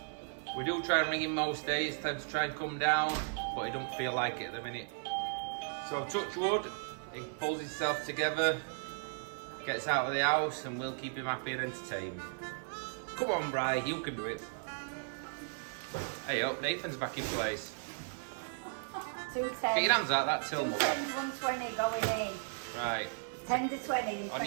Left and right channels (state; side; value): silent; left; digital silence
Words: We do try and ring him most days, time to try and come down, but he don't feel like it at the minute. So touch wood. He pulls himself together, gets out of the house, and we'll keep him happy and entertained. Come on, Bri, you can do it. Hey up, Nathan's back in place. Get 210. your hands out that till, mother. 120 going in. Right. 10 to 20.